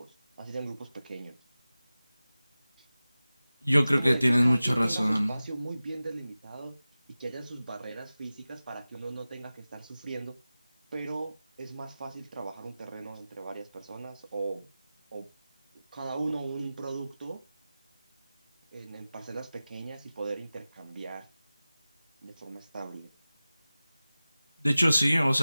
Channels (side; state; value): both; inverted; correlation -0.96